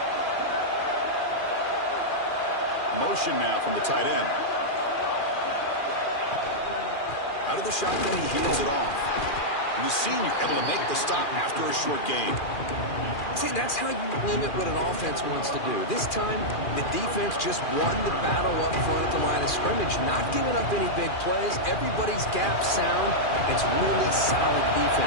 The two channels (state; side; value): late; right; 2.4 ms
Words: Motion now from the tight end. Out of the shotgun, he hands it off. And the senior able to make the stop after a short gain. See, that's how you limit what an offense wants to do. This time, the defense just won the battle up front at the line of scrimmage, not giving up any big plays. Everybody's gap sound. It's really solid